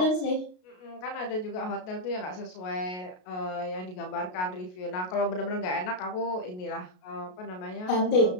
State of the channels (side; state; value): right; late; 33 ms